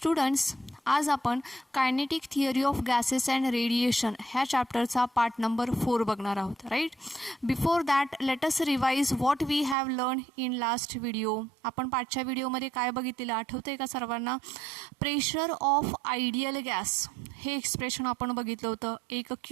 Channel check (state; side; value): drops out; left; at 9.8 s